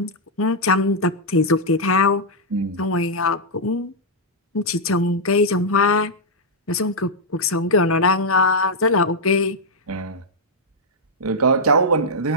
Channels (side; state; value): both; normal; correlation -0.05